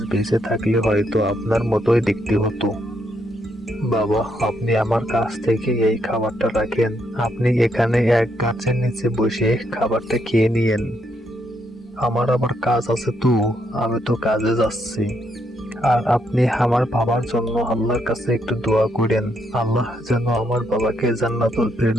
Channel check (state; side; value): normal; both; correlation 0.76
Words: বেঁচে থাকলে হয়তো আপনার মতোই দেখতে হতো। বাবা, আপনি আমার কাছ থেকে এই খাবারটা রাখেন। আপনি এখানে এক গাছের নিচে বসে খাবারটা খেয়ে নিয়েন। আমার আবার কাজ আছে তো, আমি তো কাজে যাচ্ছি। আর আপনি আমার বাবার জন্য আল্লাহর কাছে একটু দোয়া করেন, আল্লাহ যেন আমার বাবাকে জান্নাতুল